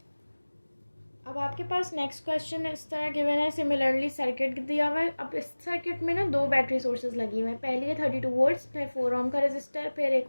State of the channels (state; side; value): inverted; both; correlation -1.00